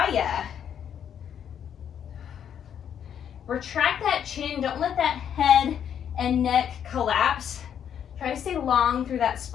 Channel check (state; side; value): quieter; right; 8.9 dB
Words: Retract that chin. Don't let that head and neck collapse. Try to stay long through that